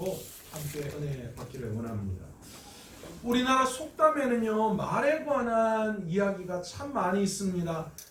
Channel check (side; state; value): both; identical; correlation 1.00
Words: 함께 은혜 받기를 원합니다. 우리나라 속담에는요, 말에 관한 이야기가 참 많이 있습니다.